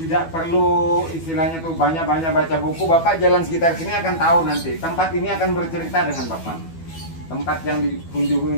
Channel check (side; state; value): right; late; 12 ms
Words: perlu istilahnya tuh banyak-banyak baca buku. Bapak jalan sekitar sini akan tahu nanti. Tempat ini akan bercerita dengan Bapak. Tempat yang dikunjungi